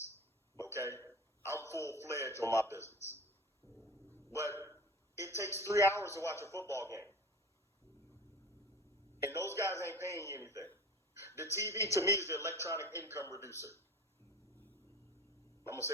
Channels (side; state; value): both; normal; correlation 0.36